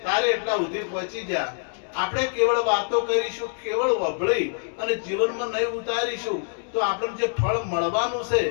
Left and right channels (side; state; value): right; silent; digital silence